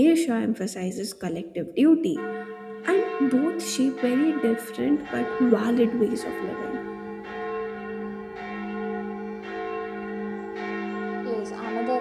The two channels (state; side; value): identical; both; correlation 1.00